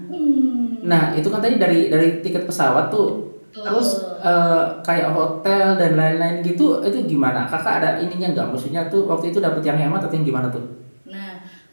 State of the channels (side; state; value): both; inverted; correlation -1.00